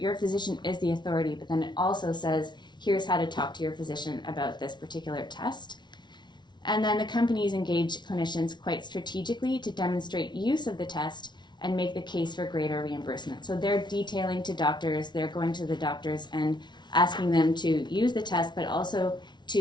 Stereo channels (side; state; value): right; late; 0.21 ms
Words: physician is the authority, but then it also says, here's how to talk to your physician about this particular test. And then the companies engage clinicians quite strategically to demonstrate use of the test and make the case for greater reimbursement. So they're detailing to doctors, they're going to the doctors and asking them to use the test, but also